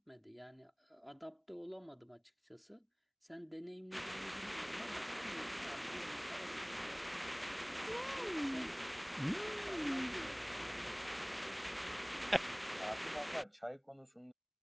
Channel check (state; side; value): identical; both; correlation 1.00